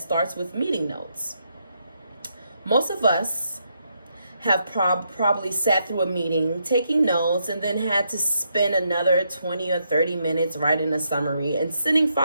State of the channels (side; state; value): both; inverted; correlation -0.79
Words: with meeting notes. Most of us have probably sat through a meeting, taking notes, and then had to spend another 20 or 30 minutes writing a summary and sending